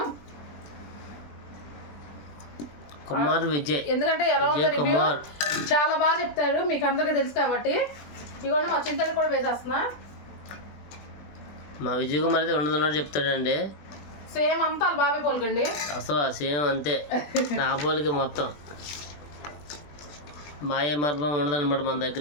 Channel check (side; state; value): right; late; 20 ms